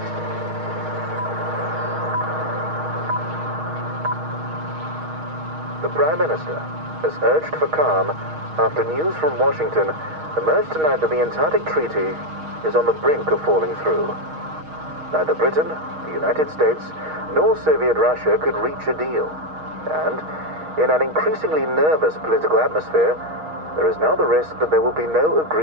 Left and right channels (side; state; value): left; late; 6.4 ms